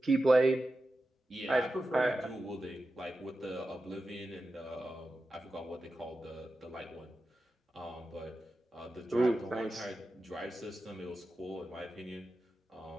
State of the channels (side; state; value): both; normal; correlation 0.92